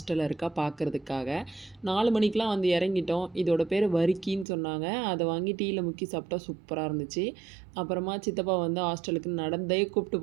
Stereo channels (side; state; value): left; drops out; at 4.5 s